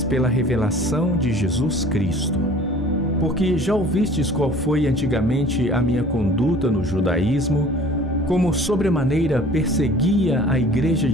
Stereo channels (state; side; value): normal; both; correlation 0.48